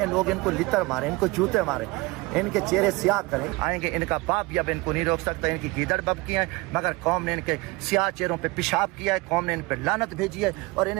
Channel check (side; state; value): left; quieter; 24.0 dB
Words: لوگ ان کو لتر مارے، ان کو جوتے مارے، ان کے چہرے سیاہ کریں. آئیں گے ان کا باپ بھی اب ان کو نہیں روک سکتا، ان کی گیدڑ بب کی ہیں، مگر قوم نے ان کے سیاہ چہروں پہ پیشاب کیا ہے، قوم نے ان پہ لعنت بھیجی ہے، اور